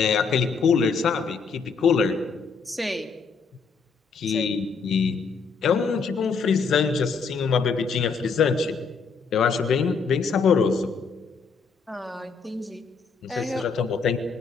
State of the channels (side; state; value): right; quieter; 5.2 dB